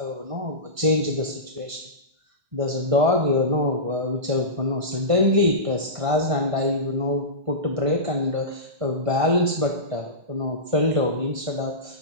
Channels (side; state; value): left; late; 1.5 ms